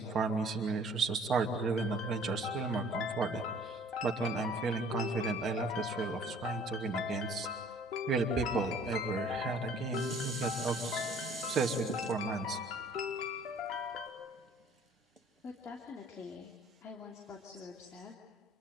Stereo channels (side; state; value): both; normal; correlation 0.53